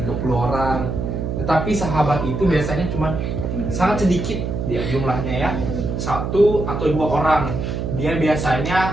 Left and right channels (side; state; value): right; noise; hum, 3 dB below the sound